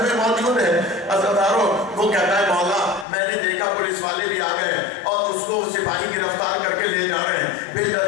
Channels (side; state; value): right; drops out; at 3.1 s